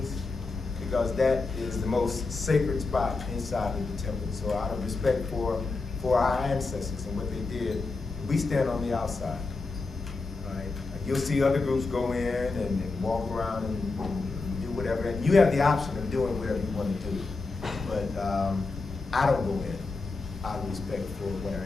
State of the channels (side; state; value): right; quieter; 3.8 dB